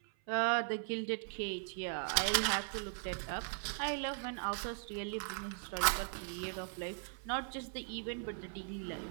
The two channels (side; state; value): left; silent; 52 dB below the other